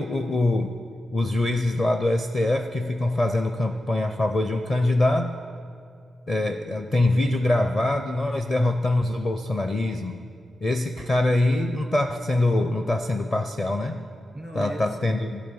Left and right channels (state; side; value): normal; both; correlation 0.92